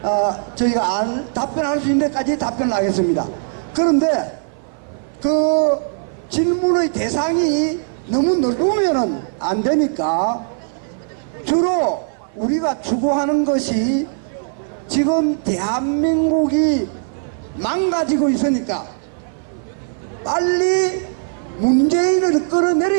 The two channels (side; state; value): left; silent; 55 dB below the other